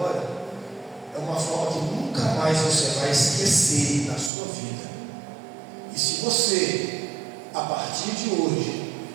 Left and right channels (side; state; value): left; drops out; at 4.3 s